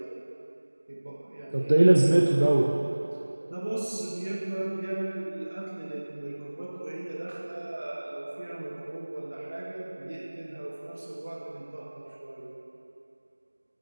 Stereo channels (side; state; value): both; inverted; correlation -1.00